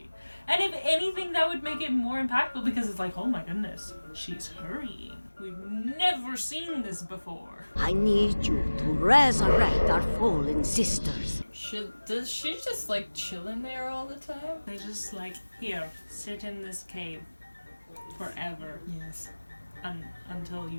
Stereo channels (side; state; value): both; inverted; correlation -1.00